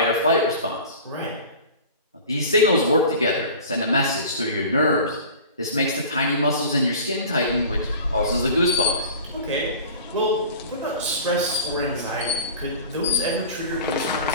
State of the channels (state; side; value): inverted; both; correlation -0.39